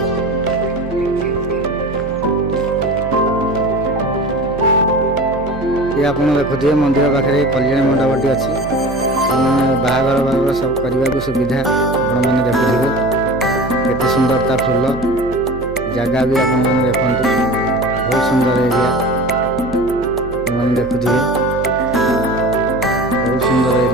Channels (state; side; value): noise; right; hum, 13 dB below the sound